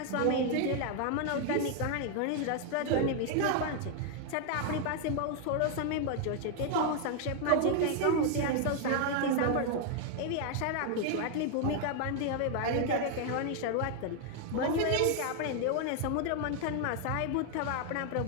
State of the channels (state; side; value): different; both; correlation 0.00